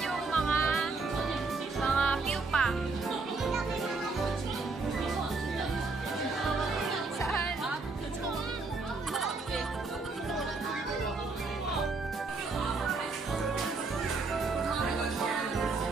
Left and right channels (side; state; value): left; quieter; 3.9 dB